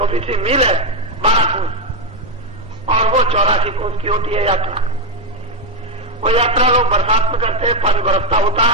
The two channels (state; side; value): normal; both; correlation 0.06